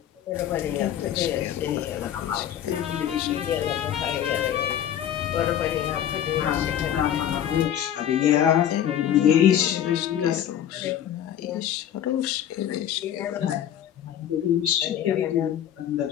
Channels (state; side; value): quieter; right; 10.4 dB